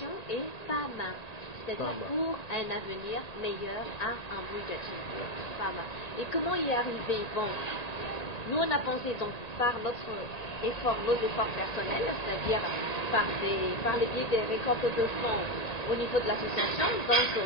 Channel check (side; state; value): right; late; 1.8 ms